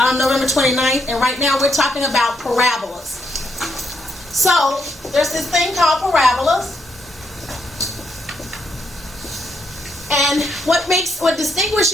29th, and right now we're talking about parabolas. So, there's this thing called parabolas. And what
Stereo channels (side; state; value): both; normal; correlation 0.77